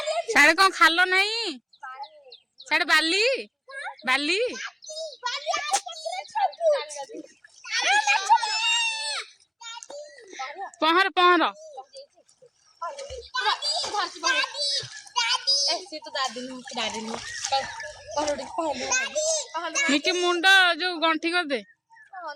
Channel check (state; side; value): identical; both; correlation 1.00